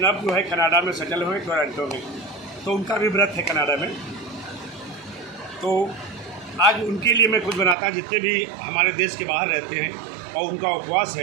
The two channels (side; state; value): left; drops out; at 7.8 s